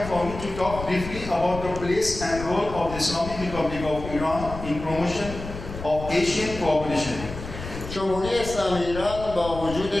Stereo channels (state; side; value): noise; left; rumble, 10 dB below the sound